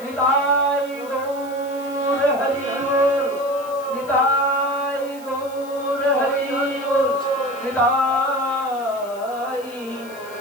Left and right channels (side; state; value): left; noise; hiss, 21 dB below the sound